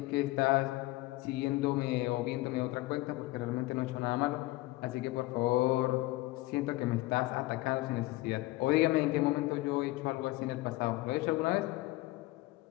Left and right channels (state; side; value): quieter; right; 19.6 dB